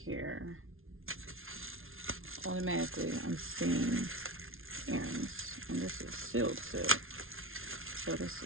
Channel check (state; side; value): late; left; 0.61 ms